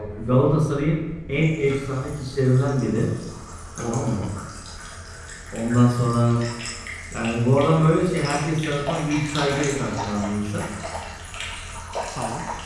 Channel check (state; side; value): identical; both; correlation 1.00